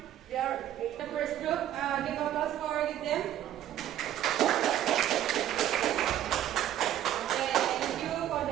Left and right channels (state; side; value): quieter; left; 11.7 dB